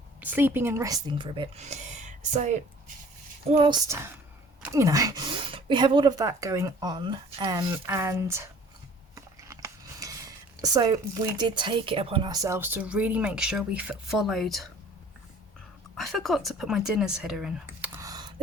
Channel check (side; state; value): both; normal; correlation 0.50